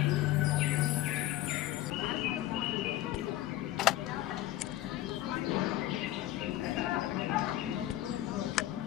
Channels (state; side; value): quieter; right; 14.6 dB